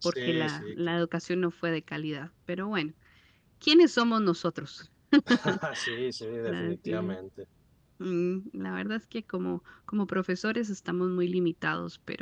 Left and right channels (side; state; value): both; identical; correlation 1.00